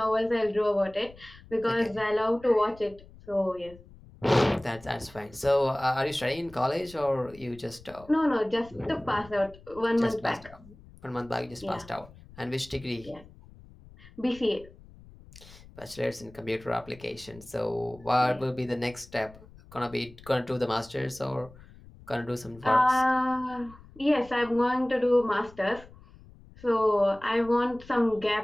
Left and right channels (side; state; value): left; noise; rumble, 22 dB below the sound